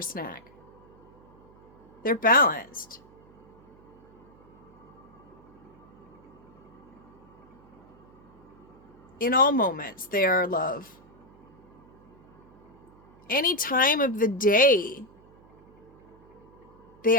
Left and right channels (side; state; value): right; noise; hum, 26 dB below the sound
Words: snack. They're balanced. In all moments, they are love. Any time of the day, they